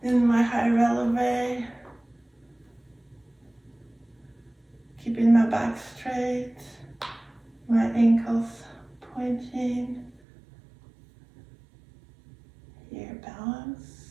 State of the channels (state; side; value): drops out; left; at 10.2 s